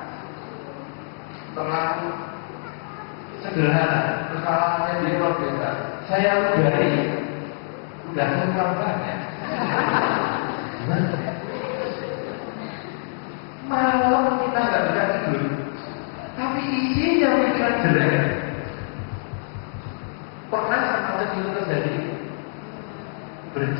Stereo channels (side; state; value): right; silent; 60 dB below the other